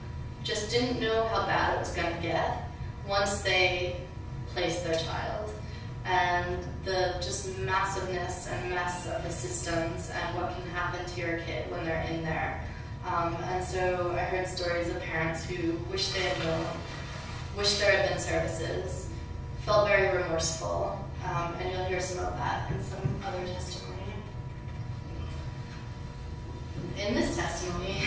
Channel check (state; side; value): identical; both; correlation 1.00